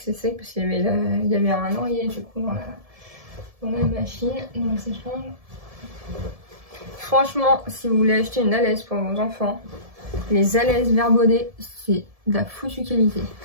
sec parce qu'il y avait un oreiller du coup dans la machine, dans le sèche-linge. Franchement, si vous voulez acheter une alaise pour vos enfants, les alaises Verbaudet, c'est de la foutue qualité.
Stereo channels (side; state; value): left; late; 1.7 ms